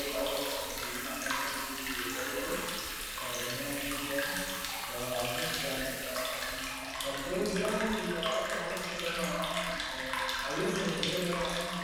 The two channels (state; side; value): identical; both; correlation 1.00